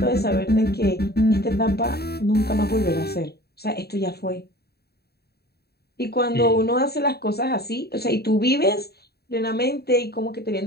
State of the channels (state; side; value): late; right; 0.47 ms